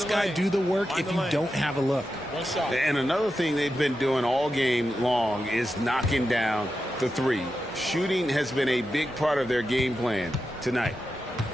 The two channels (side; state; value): both; normal; correlation 0.89